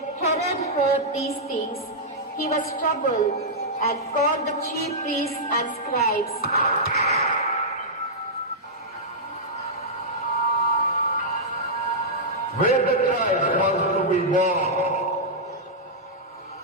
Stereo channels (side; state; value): both; normal; correlation -0.10